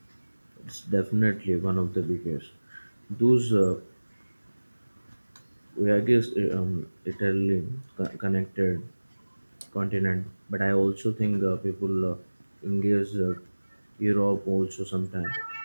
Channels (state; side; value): inverted; both; correlation -1.00